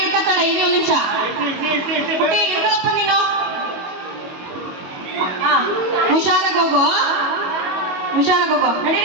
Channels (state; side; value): late; left; 22 ms